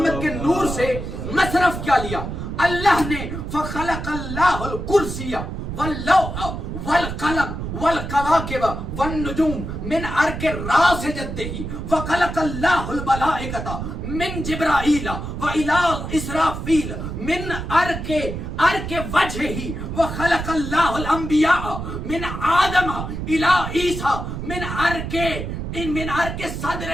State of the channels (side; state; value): right; noise; rumble, 6 dB below the sound